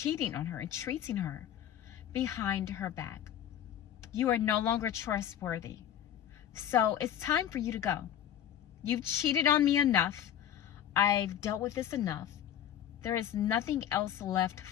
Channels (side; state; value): right; quieter; 10.2 dB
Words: on her and treating her behind her back. You are no longer trustworthy. So it's time for you to go. You've cheated on me enough. I've dealt with this enough. There is nothing else left